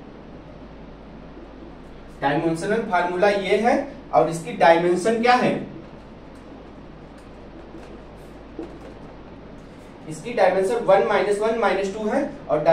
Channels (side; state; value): both; identical; correlation 1.00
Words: डायमेंशनल फार्मूला ये है। और इसकी डायमेंशन क्या है, इसकी डायमेंशन 1 -1 -2 है। और